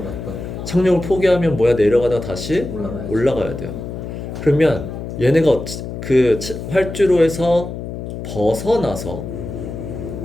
착륙을 포기하면 뭐야? 내려가다가 다시 올라가야 돼요. 그러면 얘네가 그 활주로에서 벗어나서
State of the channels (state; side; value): noise; left; hum, 8 dB below the sound